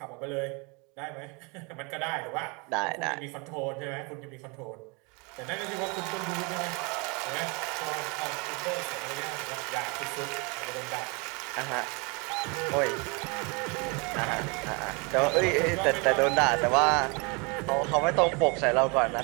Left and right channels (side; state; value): left; quieter; 30.5 dB